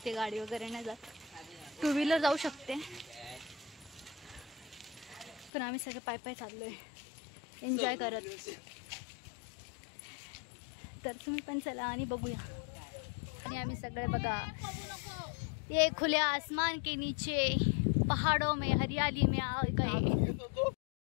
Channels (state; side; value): drops out; right; at 5.5 s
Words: गाडी वगैरे नाही जात। टू व्हीलर जाऊ शकते, पण आम्ही सगळे पाय पाय चाललोय एन्जॉय करत। तर तुम्ही पण चला आणि बघूया। आणि आम्ही सगळे बघा, ये खुले आसमान के नीचे पहाड़ों में हरियाली में आ गए।